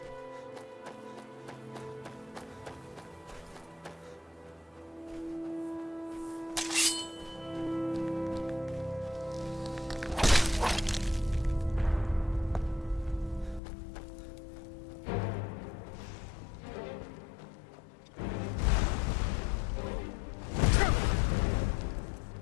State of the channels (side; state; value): right; drops out; at 13.6 s